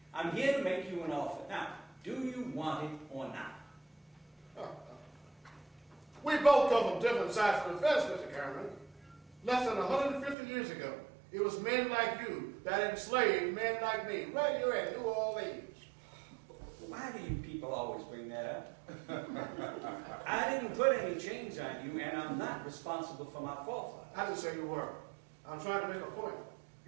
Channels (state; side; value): drops out; left; at 10.4 s